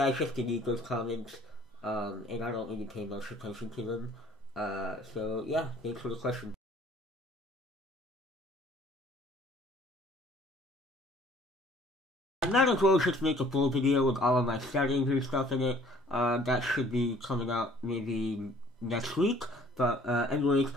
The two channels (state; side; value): normal; both; correlation 0.55